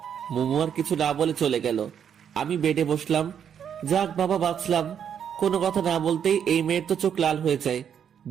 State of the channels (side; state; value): left; quieter; 8.3 dB